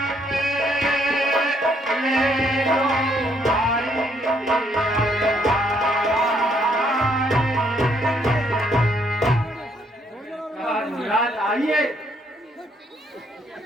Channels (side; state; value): both; normal; correlation 0.70